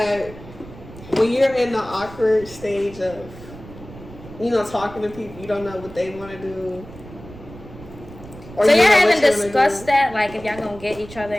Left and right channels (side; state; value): right; noise; rumble, 17 dB below the sound